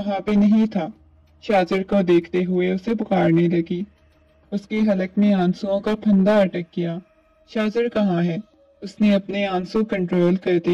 पे नहीं था। शाजिर को देखते हुए उसे पुकारने लगी। उसके हलक में आंसुओं का फंदा अटक गया। शाजिर कहाँ है? उसने अपने आंसू कंट्रोल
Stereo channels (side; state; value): both; identical; correlation 1.00